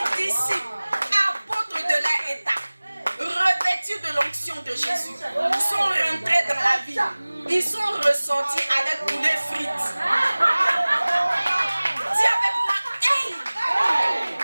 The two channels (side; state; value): both; inverted; correlation -1.00